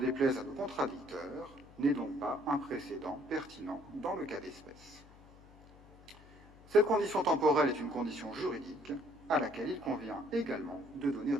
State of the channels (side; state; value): left; noise; hum, 22 dB below the sound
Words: à nos contradicteurs, n'est donc pas un précédent pertinent dans le cas d'espèce. Cette condition temporelle est une condition juridique à laquelle il convient également de donner